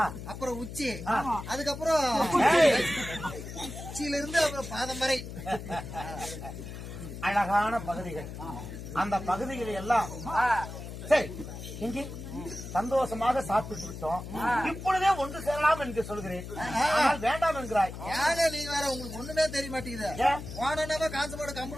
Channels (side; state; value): left; noise; hum, 10 dB below the sound